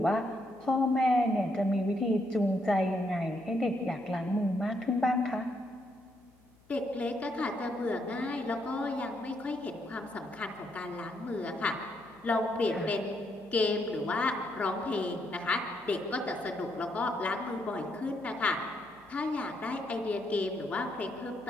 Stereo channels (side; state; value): left; noise; hum, 30 dB below the sound